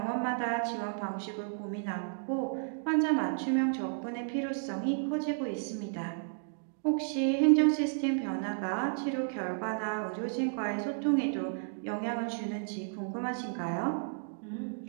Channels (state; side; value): silent; left; digital silence